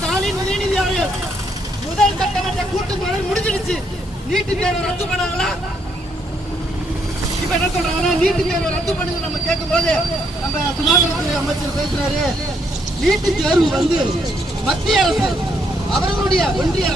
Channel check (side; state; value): both; normal; correlation 0.73